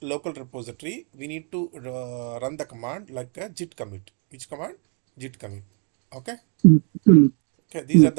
local repository, we need to run the command like a git commit. Which command? Git commit. Okay. Okay. These are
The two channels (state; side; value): quieter; left; 39.5 dB